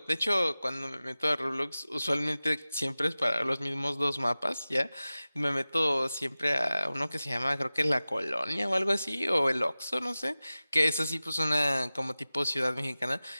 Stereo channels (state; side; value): inverted; both; correlation -0.97